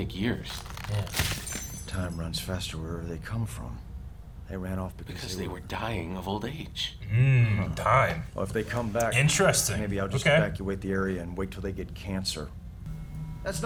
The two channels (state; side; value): identical; both; correlation 1.00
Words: years. Yeah. Time runs faster wherever they come from. They ran off because they were dying of old age. Time. Well, if they come back, Interesting. maybe I'll just evacuate the area and wait till they get cancer. That's